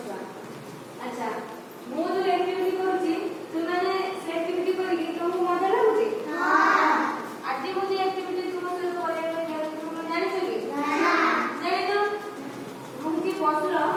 अच्छा मु जो एक्टिविटी करूची तुमने से एक्टिविटी करी तुमको मजा लागुची? हां। आज मु जो एक्टिविटी तुम से करे तुम जानि छ कि? ना। जानि तो मु की बसलो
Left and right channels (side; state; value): both; identical; correlation 1.00